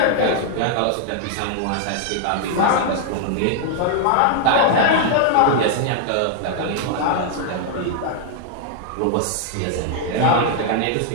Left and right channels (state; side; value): different; both; correlation -0.01